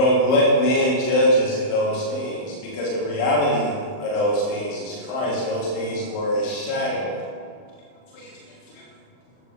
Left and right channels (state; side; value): late; right; 39 ms